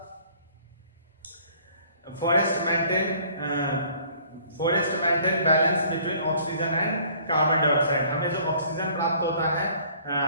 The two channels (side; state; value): both; inverted; correlation -0.56